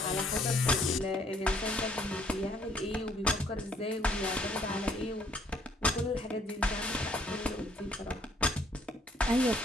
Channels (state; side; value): normal; both; correlation 0.64